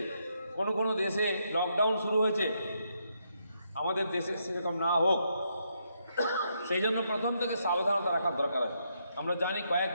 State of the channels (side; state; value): both; inverted; correlation -0.78